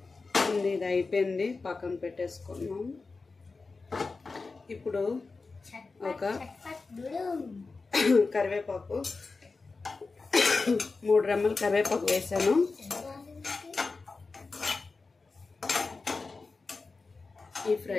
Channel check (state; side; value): quieter; right; 4.0 dB